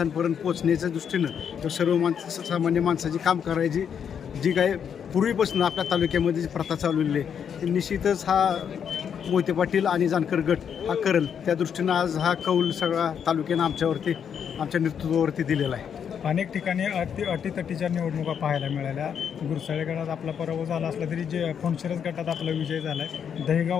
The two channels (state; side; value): quieter; right; 7.8 dB